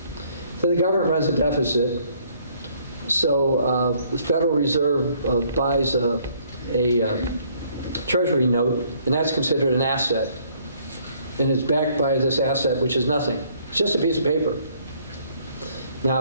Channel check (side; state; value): both; inverted; correlation -0.64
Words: So the government runs a deficit, so the Federal Reserve buys a treasury note, and that's considered an asset. And it's backed by this asset, which is nothing. It's just a piece of paper.